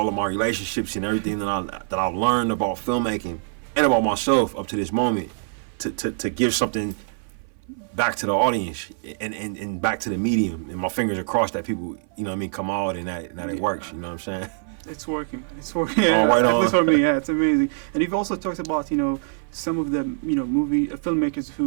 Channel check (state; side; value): silent; left; 58 dB below the other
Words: of my relationships and everything that I've learned about filmmaking and about myself up to this moment to give something back to the audience and back to the medium. And my fingers are crossed that people, you know what I mean, come out and that it works. You know what I'm saying? It's working. Yeah, right at on. least for me, yeah, it's amazing. And you've also talked about, you know, some of the, you know, movie filmmakers